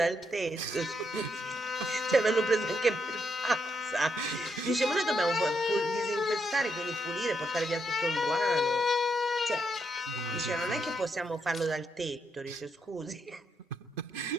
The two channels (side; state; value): both; normal; correlation 0.79